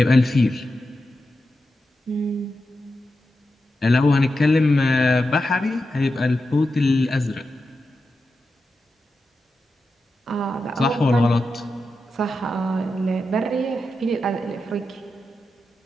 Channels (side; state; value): both; normal; correlation 0.89